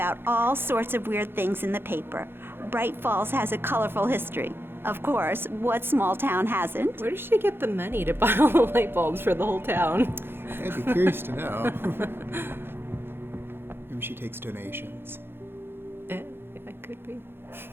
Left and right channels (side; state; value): left; late; 0.11 ms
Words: all sorts of weird things in the paper. Bright Falls has a colorful history. Of course, what small town hasn't? Where does she get the money to buy all the light bulbs for the whole town? I'd be curious to know. Maybe she takes donations. Yeah, it could be.